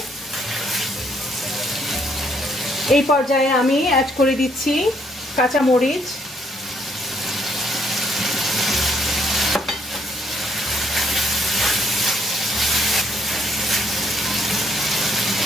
এই পর্যায়ে আমি অ্যাড করে দিচ্ছি কাঁচা মরিচ,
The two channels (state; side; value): normal; both; correlation 0.68